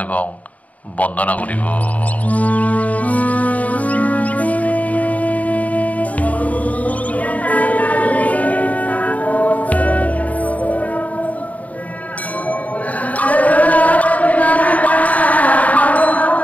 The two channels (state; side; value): late; right; 0.071 ms